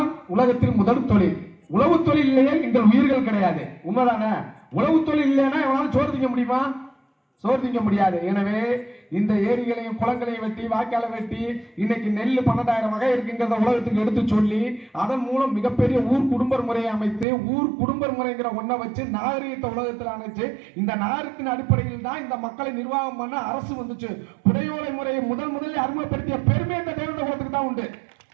உலகத்தில் முதல் தொழில். உழவு தொழில் இல்லையே எங்கள் உயிர்கள் கிடையாது. உண்மைதானே? உழவு தொழில் இல்லைன்னா எவனாலும் சோறு திங்க முடியுமா? சோறு திங்க முடியாது. எனவே இந்த ஏரிகளையும் குளங்களையும் வெட்டி வாய்க்காலை வெட்டி இன்னைக்கு நெல் 12,000 வகை இருக்குங்கிறத உலகத்துக்கு எடுத்து சொல்லி அதன் மூலம் மிகப்பெரிய ஊர் குடும்ப முறையை அமைத்து ஊர் குடும்ப முறைங்கிற ஒன்றை வச்சு நாகரீகத்தை உலகத்தில் அமைச்சு இந்த நாகரிகத்தின் அடிப்படையில் தான் இந்த மக்களை நிர்வாகம் பண்ண அரசு வந்துச்சு. புடையோலை முறையை முதலில் அறிமுகப்படுத்திய பெருமை இந்த தேவேந்திர குலத்துக்கு தான் உண்டு.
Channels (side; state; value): left; drops out; at 17.2 s